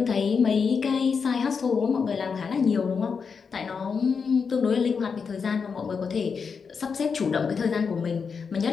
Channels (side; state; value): right; quieter; 5.7 dB